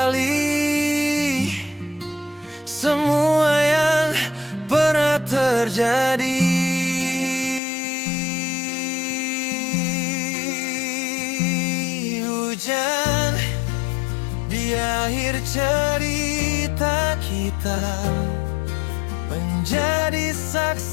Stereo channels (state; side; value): drops out; right; at 7.6 s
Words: semua yang pernah terjadi. Hujan di akhir cerita kita, menjadi